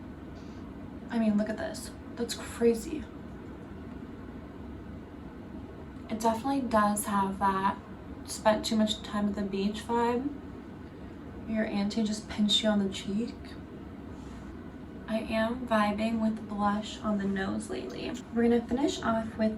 I mean, look at this. That's crazy. It definitely does have that spent too much time at the beach vibe. Your auntie just pinched you on the cheek. I am vibing with blush on the nose lately. We're gonna finish off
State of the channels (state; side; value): identical; both; correlation 1.00